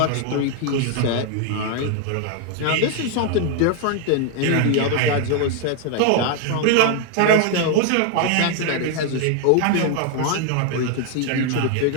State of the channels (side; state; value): both; different; correlation 0.00